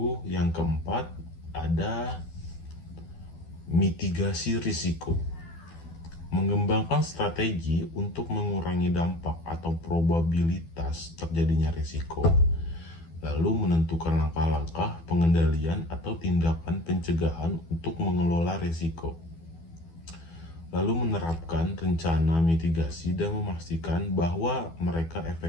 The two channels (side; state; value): right; late; 12 ms